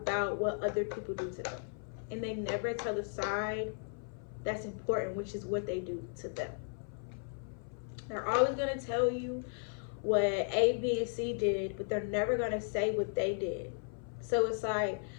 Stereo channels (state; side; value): silent; right; 54 dB below the other